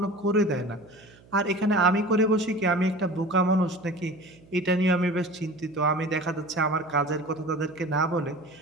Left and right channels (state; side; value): noise; right; hum, 26 dB below the sound